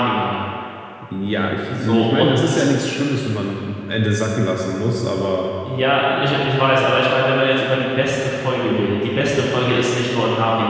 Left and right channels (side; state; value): both; identical; correlation 1.00